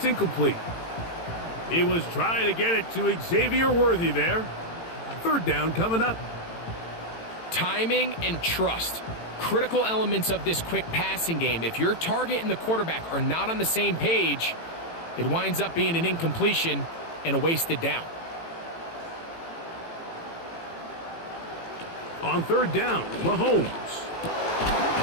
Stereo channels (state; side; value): late; right; 18 ms